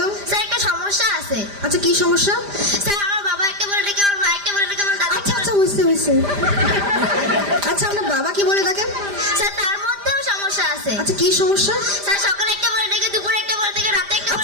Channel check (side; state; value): left; late; 5.0 ms